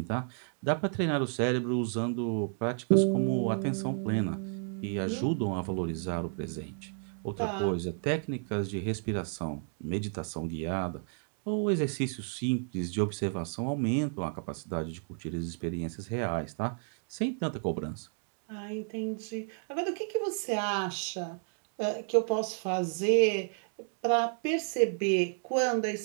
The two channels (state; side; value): silent; left; 57 dB below the other